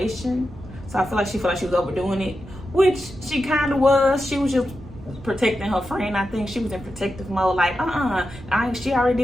So I feel like she felt like she was overdoing it, which she kind of was. She was just protecting her friend. I think she was in protective mode, like, she already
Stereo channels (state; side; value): noise; right; rumble, 17 dB below the sound